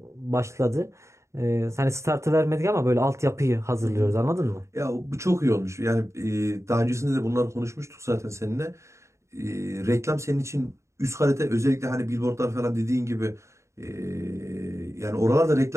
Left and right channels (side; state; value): left; late; 0.14 ms